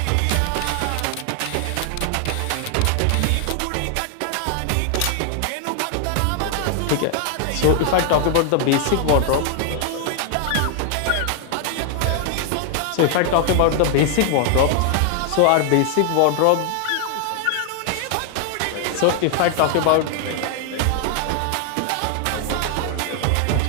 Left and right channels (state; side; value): different; both; correlation 0.00